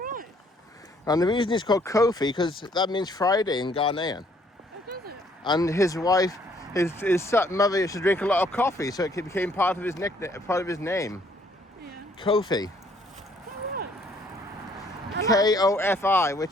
right. And the reason he's called Kofi, because that means Friday in Ghanaian. Oh, does it? And his wife, his mother used to drink a lot of coffee, so it became part of his nickname, part of his name. Yeah. Kofi. Oh, right. Kofi,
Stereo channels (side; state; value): both; normal; correlation 0.64